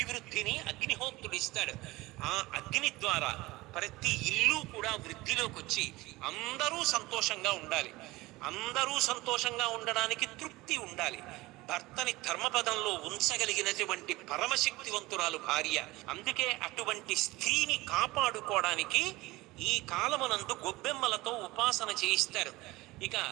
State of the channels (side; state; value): left; quieter; 20.3 dB